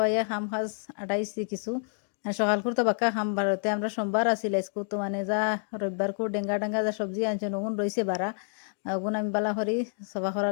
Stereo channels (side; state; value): right; silent; digital silence